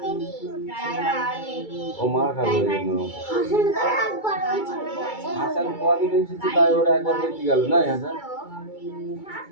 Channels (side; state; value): right; late; 2.3 ms